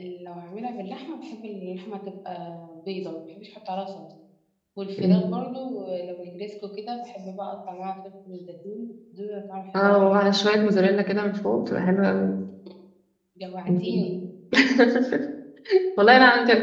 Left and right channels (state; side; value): identical; both; correlation 1.00